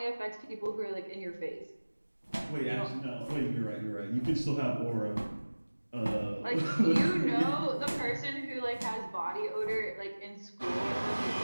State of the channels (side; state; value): both; inverted; correlation -1.00